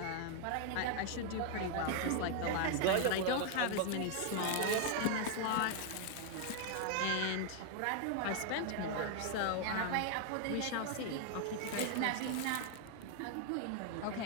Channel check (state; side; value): different; both; correlation 0.00